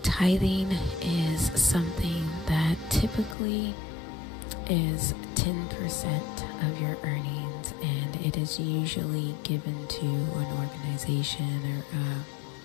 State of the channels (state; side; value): drops out; right; at 3.4 s